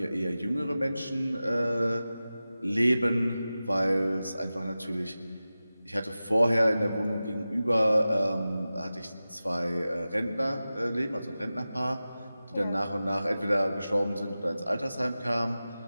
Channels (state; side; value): inverted; both; correlation -0.95